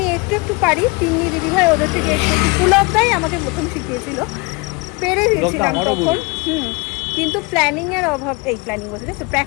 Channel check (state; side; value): quieter; right; 27.3 dB